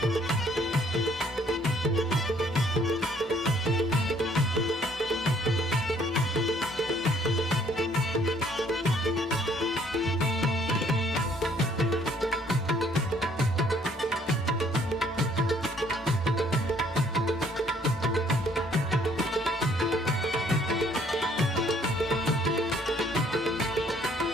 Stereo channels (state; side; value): normal; both; correlation 0.62